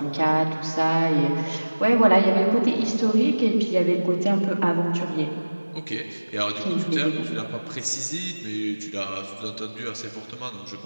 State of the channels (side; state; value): both; inverted; correlation -1.00